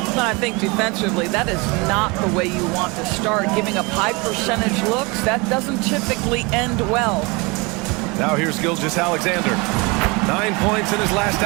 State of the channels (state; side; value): quieter; left; 27.2 dB